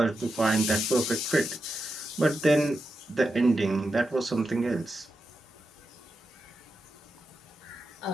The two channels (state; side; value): normal; both; correlation 0.87